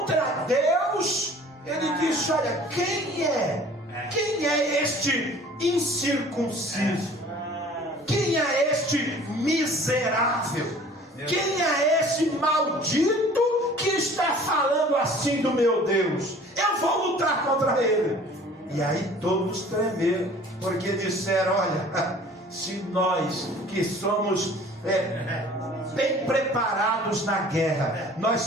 Deus, ele disse: olha, quem é este incircunciso? Quem é este miserável? Quem é este maldito que está falando assim do meu Deus? Eu vou lutar contra ele. E aí todos tremeram, porque disseram: olha, se nós que somos bem preparados na guerra. Nós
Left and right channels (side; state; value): both; normal; correlation 0.49